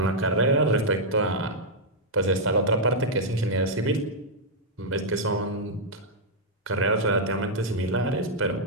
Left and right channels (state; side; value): normal; both; correlation -0.05